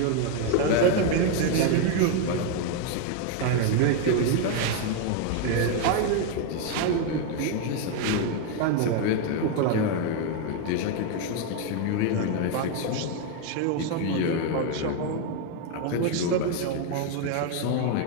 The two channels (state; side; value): different; both; correlation 0.01